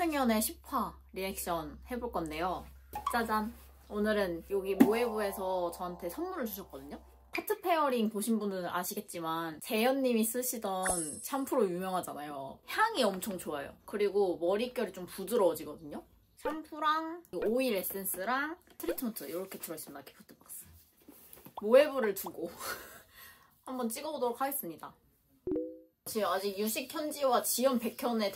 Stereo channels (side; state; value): both; identical; correlation 1.00